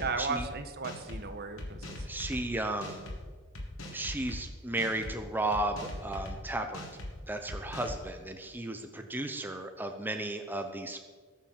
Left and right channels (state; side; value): normal; both; correlation 0.39